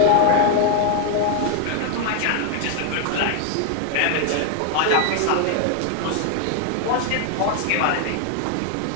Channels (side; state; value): both; different; correlation 0.00